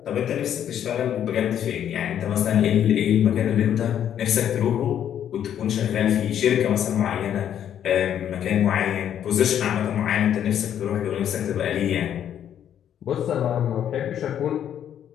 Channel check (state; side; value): quieter; right; 9.8 dB